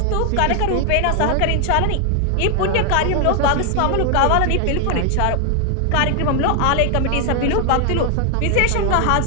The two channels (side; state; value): both; different; correlation 0.00